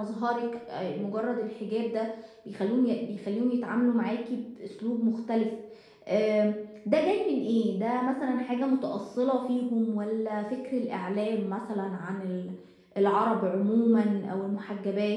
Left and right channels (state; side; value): identical; both; correlation 1.00